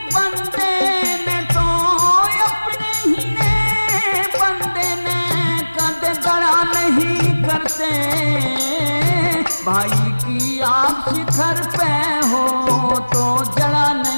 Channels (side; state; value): both; inverted; correlation -1.00